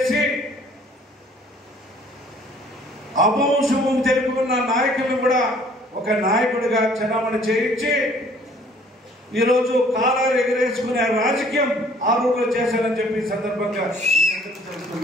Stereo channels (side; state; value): both; normal; correlation 0.56